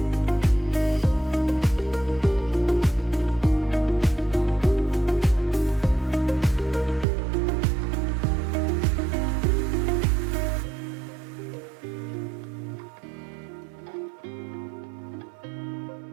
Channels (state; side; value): drops out; left; at 7.1 s